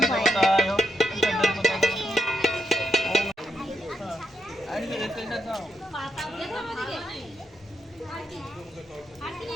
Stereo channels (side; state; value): both; normal; correlation 0.80